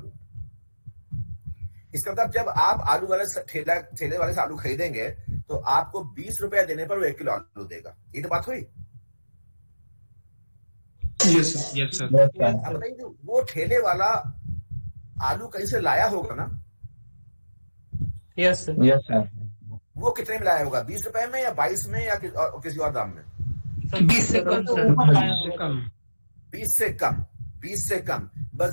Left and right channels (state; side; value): inverted; both; correlation -1.00